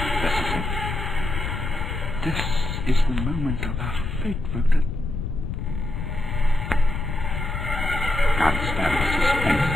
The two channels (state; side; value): noise; left; rumble, 4 dB below the sound